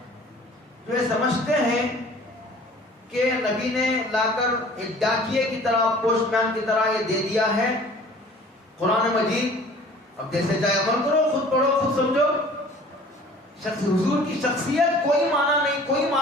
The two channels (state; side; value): normal; both; correlation 0.48